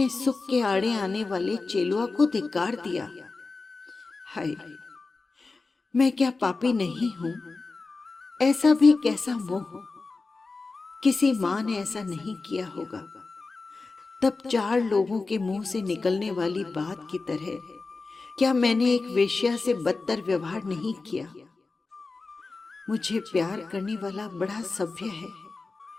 सुख के आड़े आने वाले चेलुआ को धिक्कार दिया। हाय, मैं क्या पापी नहीं हूं? ऐसा भी कैसा मोह! किसी मां ने ऐसा नहीं किया होगा। तब 4 लोगों के मुंह से निकलने वाली बात की तरह क्या मैंने एक वेश्या से बदतर व्यवहार नहीं किया? मुझे प्यार करने वाला बड़ा सभ्य है,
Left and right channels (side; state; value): right; quieter; 3.9 dB